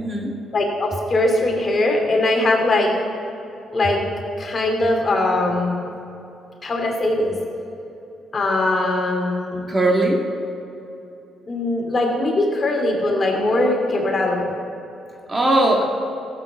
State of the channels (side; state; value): both; normal; correlation 0.78